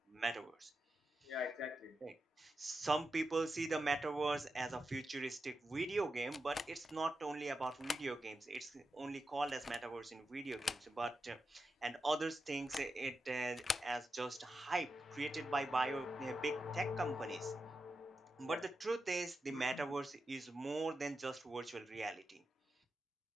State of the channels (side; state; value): both; normal; correlation 0.89